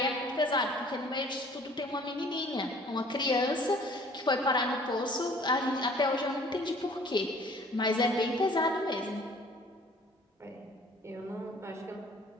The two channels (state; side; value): normal; both; correlation 0.53